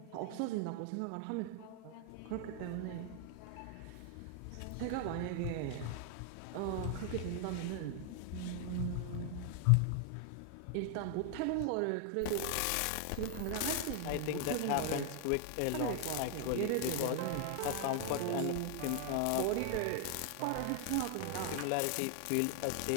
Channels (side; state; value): both; different; correlation 0.00